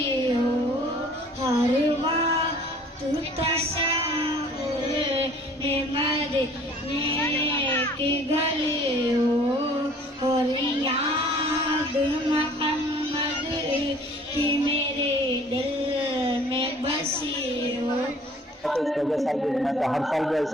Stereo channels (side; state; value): both; normal; correlation 0.52